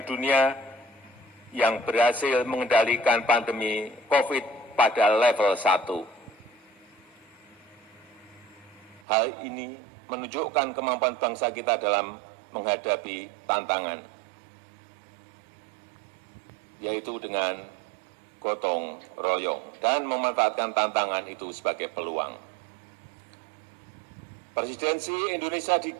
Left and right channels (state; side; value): drops out; left; at 9.0 s